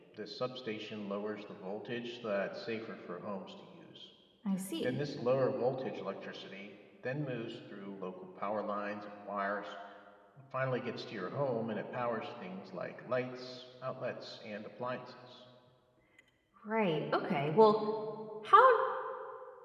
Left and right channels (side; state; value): both; identical; correlation 1.00